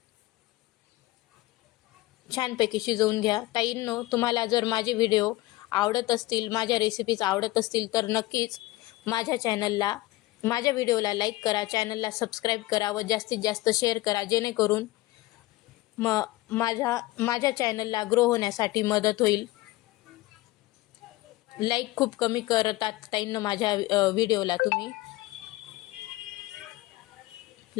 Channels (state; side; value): quieter; right; 18.9 dB